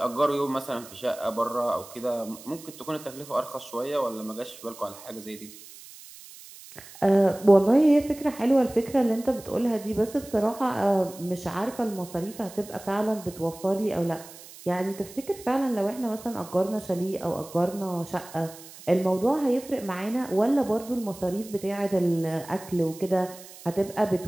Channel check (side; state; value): right; noise; hiss, 18 dB below the sound